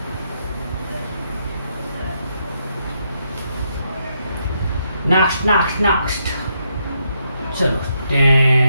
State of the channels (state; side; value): inverted; both; correlation -0.78